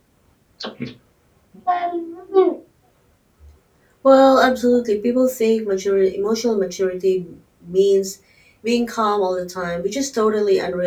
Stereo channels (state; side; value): identical; both; correlation 1.00